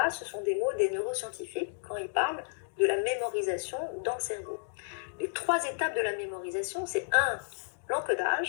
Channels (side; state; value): right; silent; digital silence